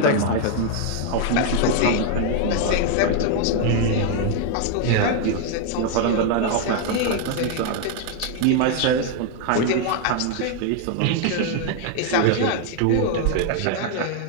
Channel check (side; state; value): both; different; correlation 0.01